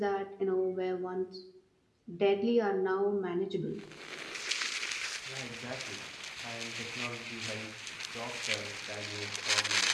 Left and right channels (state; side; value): identical; both; correlation 1.00